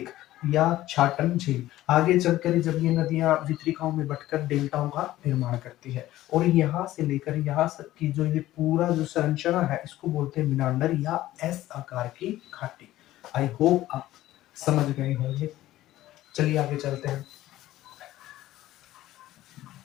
या छाटन झील। आगे चलकर जब ये नदियां वितरिकाओं में बटकर डेल्टाओं का निर्माण करती है और यहाँ से लेकर यहाँ तक की जो ये पूरा जो संरचना है इसको बोलते हैं मीनांडर या एस आकार की घाटी। आई होप आप समझ गए होंगे। चलिए आगे चलते हैं।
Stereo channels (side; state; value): right; quieter; 15.1 dB